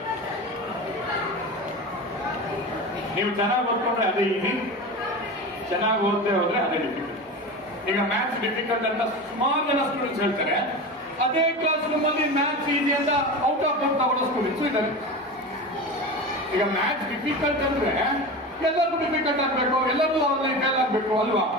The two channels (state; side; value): normal; both; correlation 0.27